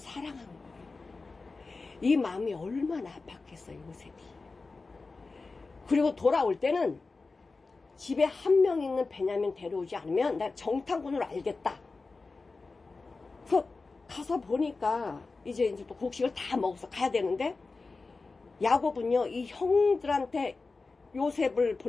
거예요. 이 마음이 얼마나 아팠겠어요, 요셉이. 그리고 돌아올 때는 집에 한 명 있는 베냐민 데려오지 않으면 나 정탐꾼으로 알겠다. 그래서 가서 보니까 이제 또 곡식을 다 먹어서 가야 되는데, 야곱은요, 이 형들한테 요셉을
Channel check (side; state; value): right; quieter; 3.9 dB